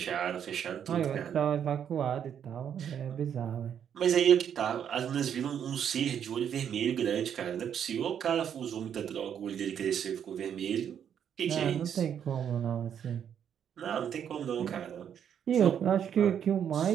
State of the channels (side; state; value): left; quieter; 8.7 dB